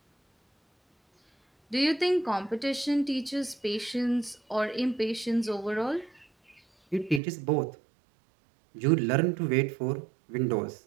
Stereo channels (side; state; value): left; drops out; at 7.2 s